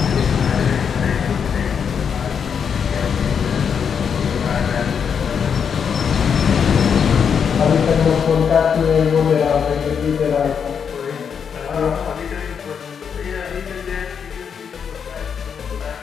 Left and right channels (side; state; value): right; quieter; 7.0 dB